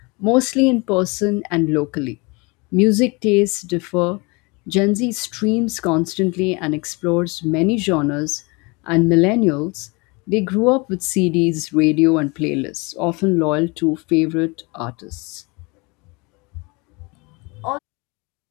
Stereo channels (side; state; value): right; quieter; 27.9 dB